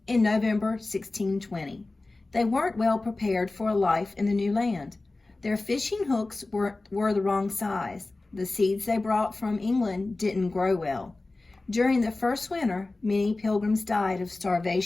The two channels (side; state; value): right; quieter; 3.2 dB